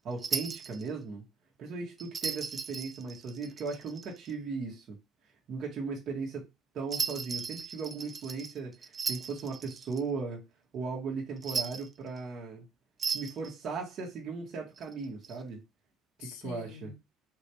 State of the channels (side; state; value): left; quieter; 4.6 dB